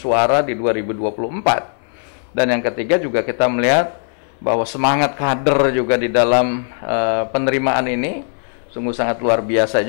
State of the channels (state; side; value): silent; right; 64 dB below the other